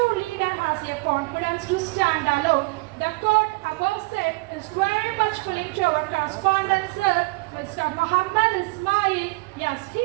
leader has a confidence to stand alone. The quote above said is very much filling to our correspondent sir, Mr. Muhammad Ismail. Yes,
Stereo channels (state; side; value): quieter; left; 25.9 dB